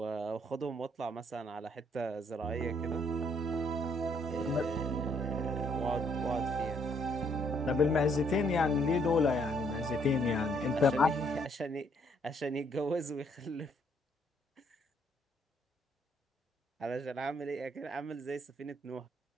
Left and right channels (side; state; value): both; normal; correlation 0.69